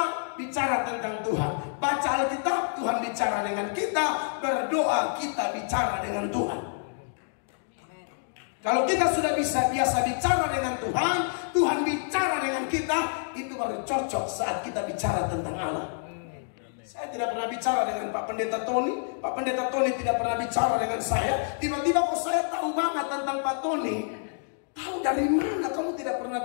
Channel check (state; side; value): silent; right; digital silence